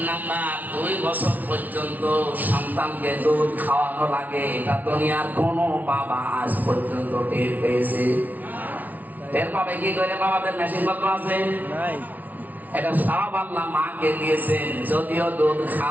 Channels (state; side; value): late; left; 0.077 ms